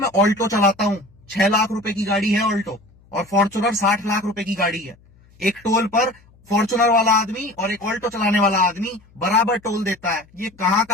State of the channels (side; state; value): left; noise; hum, 29 dB below the sound